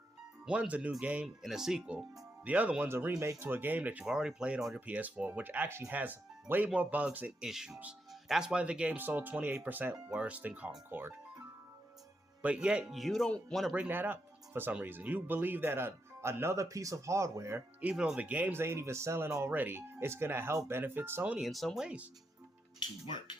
One's a new game and a sequel. The other one's a remake to a game that you've already played on your PS4, which actually has way more bugs and issues. That's why the game sold 28% worse than Concord. But yet, you don't want to bring that up for some reason. You believe that another piece of hardware, even though the games ain't even selling already, is going to help benefit Sony in some ways. To work.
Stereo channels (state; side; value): normal; both; correlation 0.83